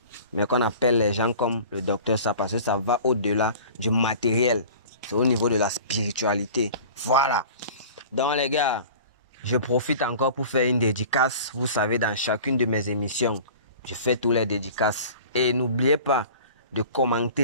mais qu'on appelle les gens comme le docteur ça parce que ça va au-delà du matériel. C'est au niveau de la spiritualité. Voilà. Donc les gars, je profite encore pour faire une dédicace. Vous savez, dans chacune de mes émissions, je fais tous les dédicaces. Et n'oubliez pas de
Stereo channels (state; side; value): inverted; both; correlation -0.42